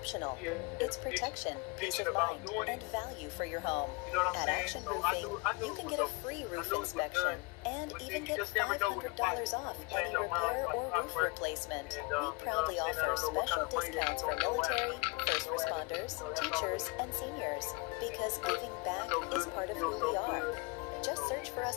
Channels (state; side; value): quieter; right; 27.5 dB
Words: It's protection, peace of mind, and value for your home. At Action Roofing, you can get a free roof inspection and even get $500 off any repair or roof replacement. We proudly offer special discounts for military, first responders, teachers, and seniors because giving back is part of who we are. Just search for